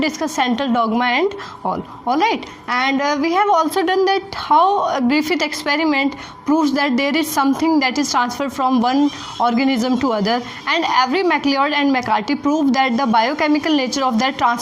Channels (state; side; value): identical; both; correlation 1.00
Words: discussed central dogma and all. Alright, and we have also done that how a Griffith experiment proves that there is something that is transferred from one organism to other, and every MacLeod and McCarthy proved that the biochemical nature of that